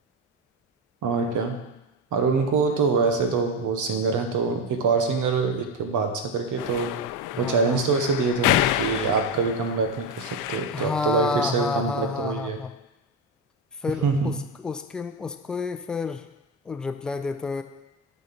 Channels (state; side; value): normal; both; correlation 0.13